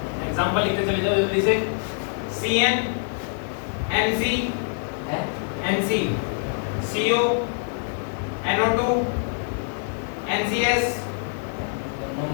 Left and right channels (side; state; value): right; silent; digital silence